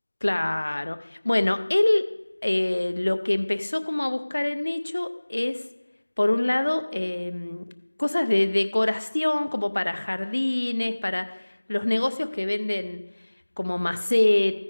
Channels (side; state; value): both; inverted; correlation -1.00